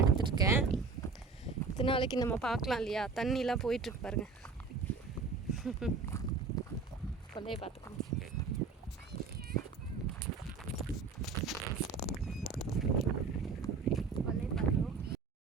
எடுத்துருக்கேன். இத்தனை நாளைக்கு நம்ம பார்க்கலாம் இல்லையா, தண்ணிலாம் போயிட்டுருக்கு பாருங்கள். கொல்லையை பார்த்துக்கோங்க.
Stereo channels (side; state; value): left; quieter; 4.7 dB